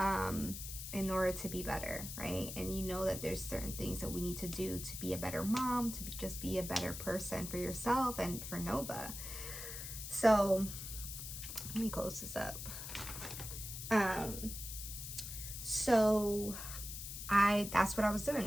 in order to be better, right? And you know that there's certain things that we need to do to be a better mom, to just be a better person for yourself and for Nova. So let me close this up. So that's what I was doing.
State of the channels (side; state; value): left; noise; hiss, 8 dB below the sound